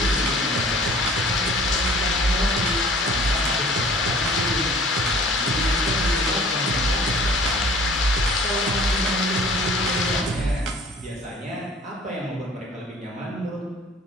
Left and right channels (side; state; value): both; normal; correlation 0.50